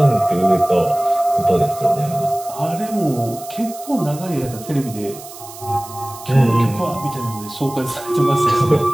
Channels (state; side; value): noise; right; hiss, 16 dB below the sound